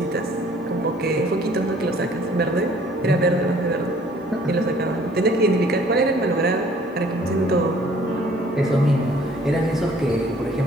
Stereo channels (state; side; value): normal; both; correlation 0.56